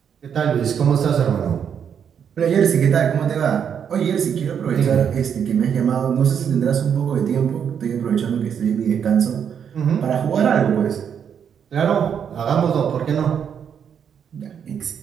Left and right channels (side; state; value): left; quieter; 7.9 dB